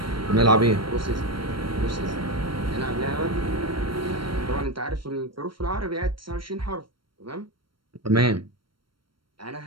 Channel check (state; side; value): late; left; 0.73 ms